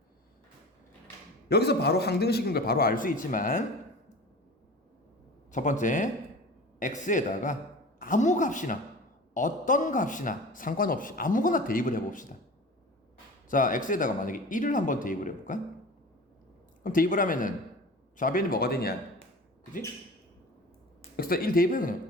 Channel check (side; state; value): both; normal; correlation 0.37